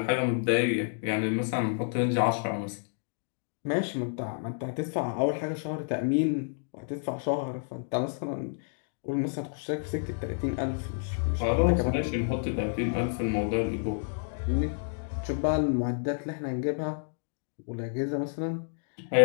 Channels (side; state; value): right; silent; digital silence